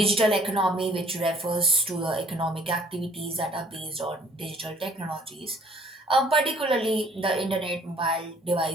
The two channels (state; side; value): normal; both; correlation 0.58